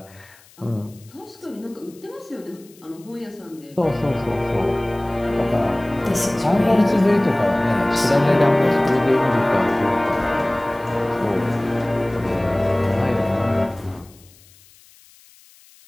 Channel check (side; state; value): left; noise; hiss, 27 dB below the sound